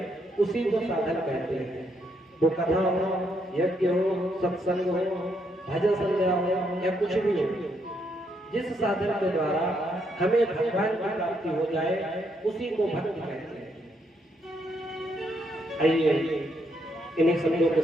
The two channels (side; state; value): both; normal; correlation 0.75